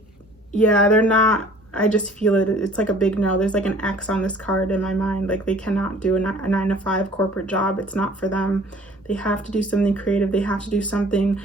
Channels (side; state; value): both; normal; correlation 0.52